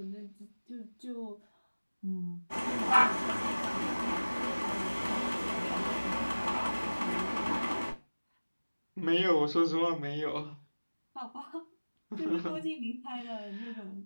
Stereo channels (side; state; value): both; inverted; correlation -1.00